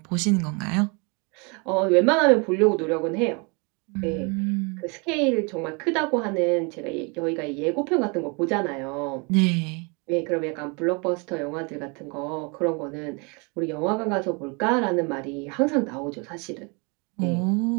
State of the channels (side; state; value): left; quieter; 31.7 dB